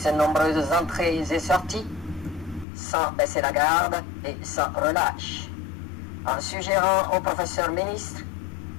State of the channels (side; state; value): right; drops out; at 2.7 s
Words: nombreuses entrées et sorties, sans baisser la garde et sans relâche, en suggérant au professeur ministre